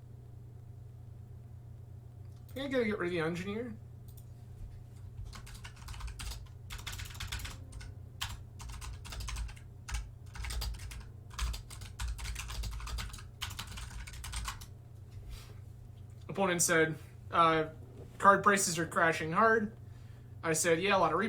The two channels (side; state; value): both; identical; correlation 1.00